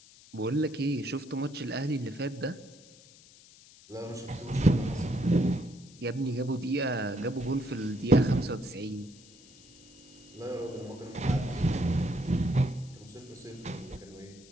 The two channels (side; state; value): left; noise; hiss, 23 dB below the sound